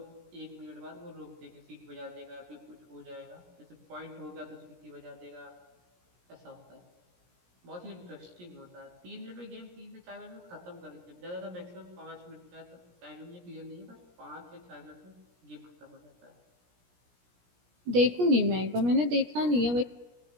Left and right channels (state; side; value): late; left; 17 ms